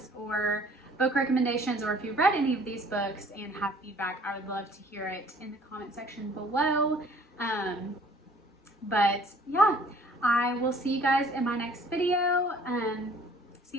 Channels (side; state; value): both; normal; correlation 0.55